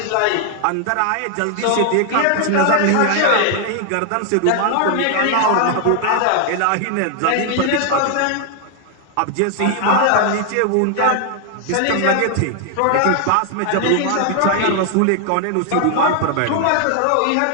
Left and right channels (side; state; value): both; different; correlation 0.00